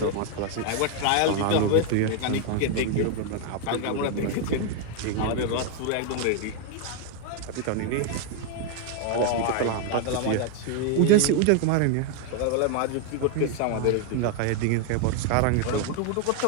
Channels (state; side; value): different; both; correlation 0.00